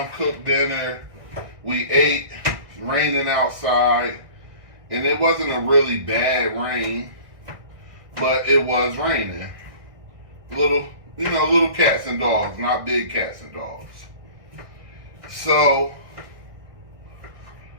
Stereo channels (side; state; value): left; late; 1.4 ms